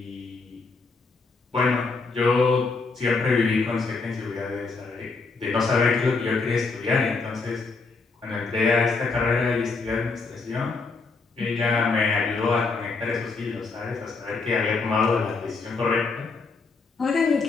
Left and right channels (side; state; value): right; quieter; 4.2 dB